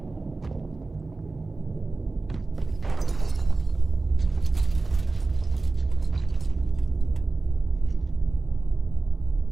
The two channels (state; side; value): quieter; left; 3.5 dB